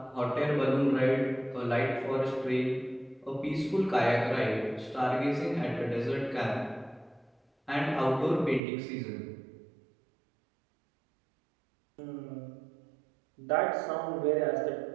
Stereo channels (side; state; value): left; drops out; at 8.6 s